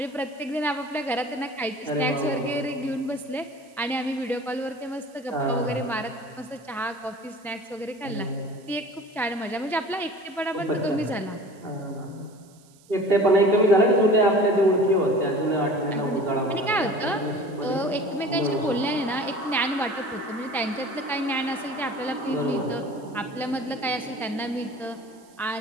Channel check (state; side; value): noise; right; hiss, 29 dB below the sound